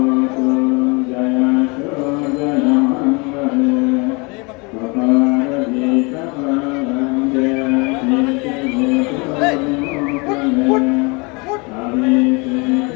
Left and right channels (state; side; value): quieter; right; 29.2 dB